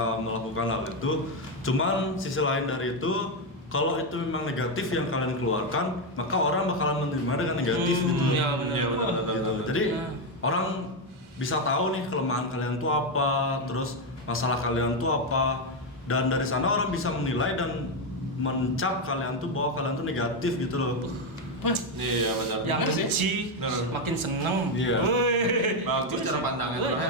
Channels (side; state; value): both; normal; correlation 0.06